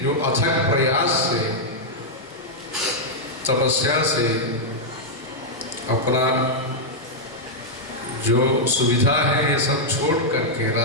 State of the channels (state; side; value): normal; both; correlation -0.05